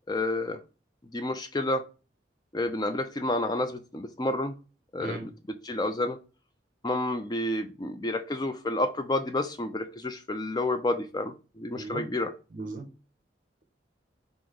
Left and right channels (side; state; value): both; normal; correlation 0.45